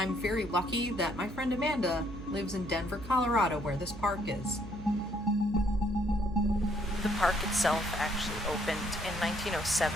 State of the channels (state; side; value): noise; right; hum, 12 dB below the sound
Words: very lucky that my friend Amanda lives in Denver, Colorado, where this park is. The park itself actually opened in 1907,